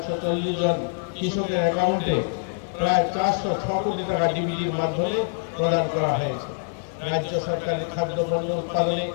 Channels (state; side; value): silent; right; digital silence